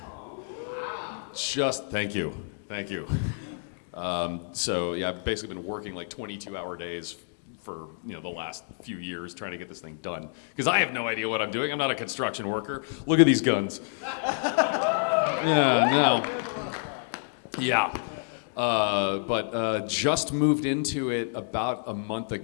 Thank you. I've basically been working like 22-hour days for the last few years trying to get this thing done. Because I have no idea what I'm doing. I'm not a construction worker. Look at these guns. But just moved into it about a month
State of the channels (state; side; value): silent; right; digital silence